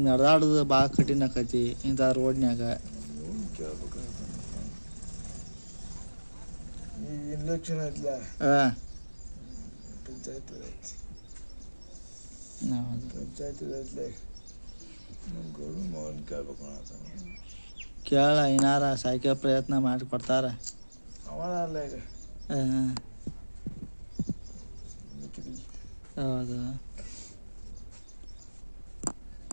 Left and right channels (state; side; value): inverted; both; correlation -1.00